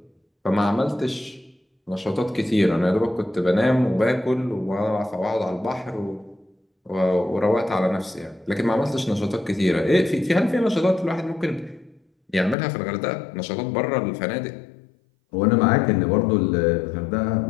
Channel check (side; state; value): right; drops out; at 12.6 s